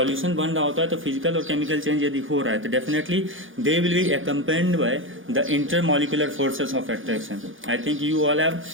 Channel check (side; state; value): left; late; 0.58 ms